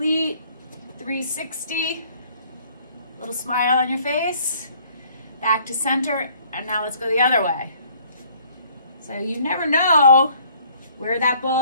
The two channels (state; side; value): inverted; both; correlation -0.59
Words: 360, little smile on your face, back to center, and now let's go the other way. So you never know where that